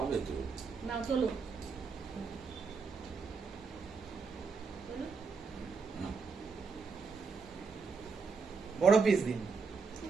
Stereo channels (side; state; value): left; quieter; 5.0 dB